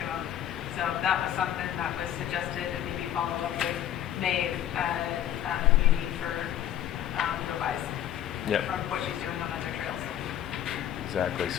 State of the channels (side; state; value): right; quieter; 11.1 dB